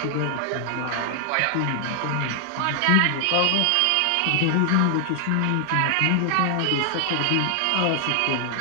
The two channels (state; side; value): different; both; correlation 0.00